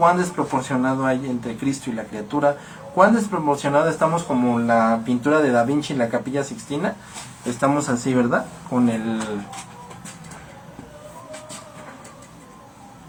desproporcionado hay entre Cristo y la criatura? ¿Cuán desproporcionado estamos, como la pintura de Da Vinci en la Capilla Sixtina? Estamos así, ¿verdad?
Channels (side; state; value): both; identical; correlation 1.00